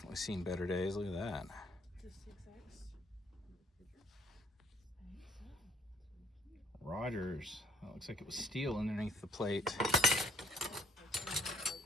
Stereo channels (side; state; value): both; normal; correlation 0.63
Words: seen better days. Look at that. Rogers. That looks like it was steel underneath the plate.